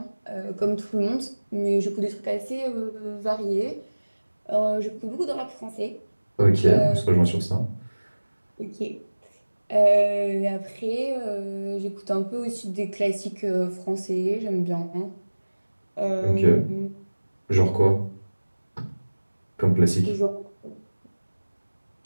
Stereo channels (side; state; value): both; inverted; correlation -1.00